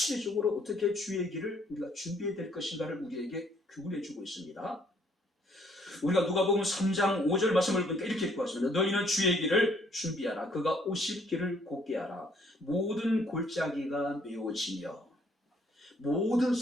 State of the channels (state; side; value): normal; both; correlation 0.65